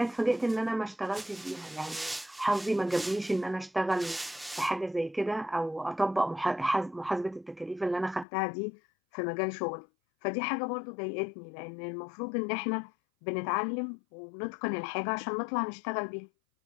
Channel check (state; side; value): drops out; right; at 8.2 s